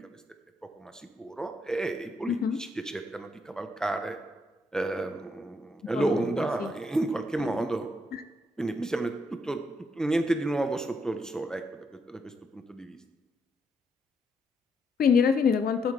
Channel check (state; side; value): normal; both; correlation 0.76